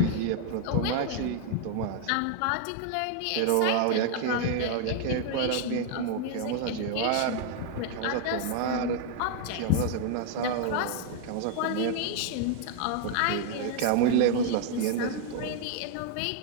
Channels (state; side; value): different; both; correlation 0.00